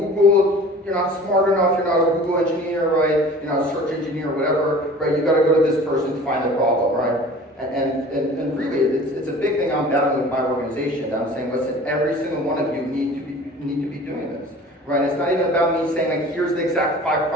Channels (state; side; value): normal; both; correlation 0.43